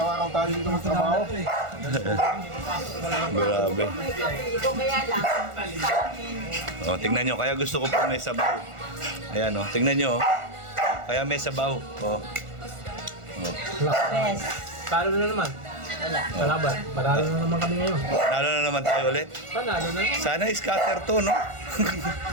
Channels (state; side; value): late; left; 1.4 ms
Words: tayo dito magtrabaho. Grabe. Ito kaya lang. O, tingnan nyo, kaya gusto ko po may sabaw. Ayan, tingnan nyo. Kaya may sabaw. Best. Talo na naman. Wala. Kalaban. Panalo na naman kami ngayon. Lalo na naman tayo ulit. Panalo na naman. Sana scatter to, no?